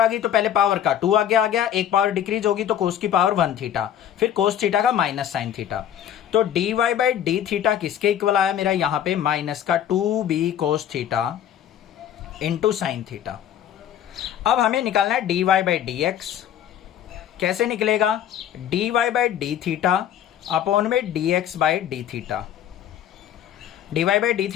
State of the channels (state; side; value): quieter; right; 10.1 dB